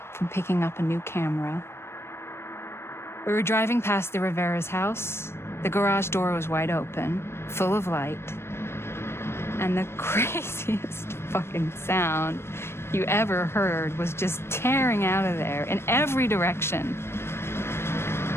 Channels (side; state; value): right; late; 0.12 ms